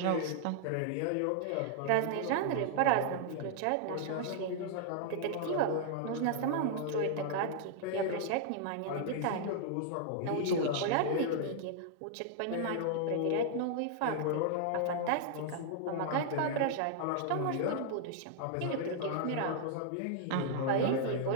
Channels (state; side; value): different; both; correlation -0.01